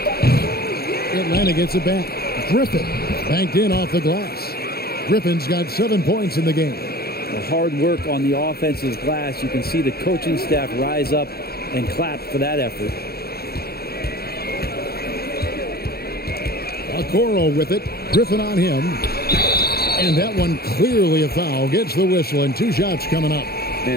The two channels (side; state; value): right; late; 0.45 ms